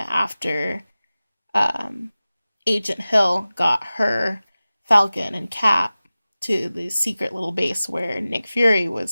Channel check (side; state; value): both; inverted; correlation -0.97